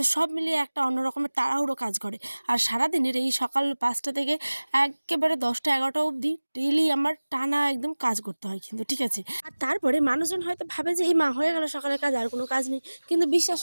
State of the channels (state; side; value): inverted; both; correlation -1.00